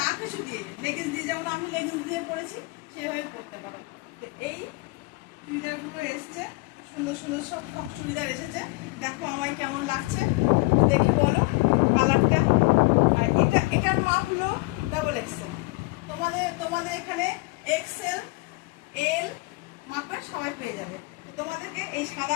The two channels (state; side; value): quieter; right; 25.1 dB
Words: কিছু দিয়ে, লেগিংস দিয়ে, যেমন আমি লেগিংস দিয়ে পরেছি সেভাবে পরতে পারো। তো এই চুড়িদারগুলো এসছে, সুন্দর সুন্দর সব চুড়িদার এসেছে। দেখো আমায় কেমন লাগছে দেখে বলো কালারটা। আর এটার মাপ হলো ডাবল এক্সেল। তোমাদের এখানে এক্সেল, এল মাপের সবাই পেয়ে যাবে। তোমাদেরকে এই